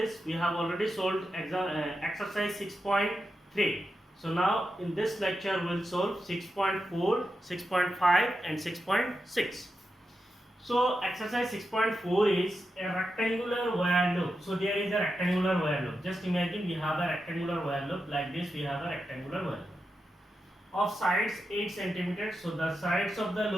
we have already solved exercise 6.3. So now in this lecture we will solve 6.4, 6.5 and 6.6. So exercise 6.4 is a rectangular wire loop. So there is a rectangular wire loop. Just imagine we have a rectangular wire loop like this. We have a rectangular wire loop of sides 8 centimeters. So the sides of the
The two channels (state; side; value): normal; both; correlation 0.88